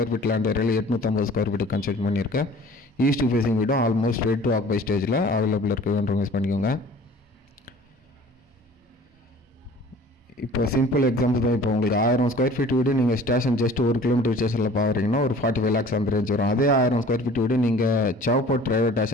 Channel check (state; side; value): normal; both; correlation 0.47